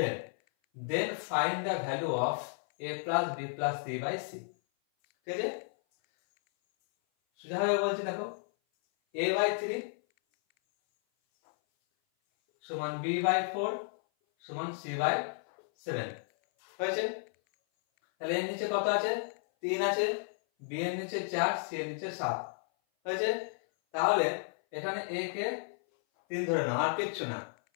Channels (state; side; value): silent; right; 56 dB below the other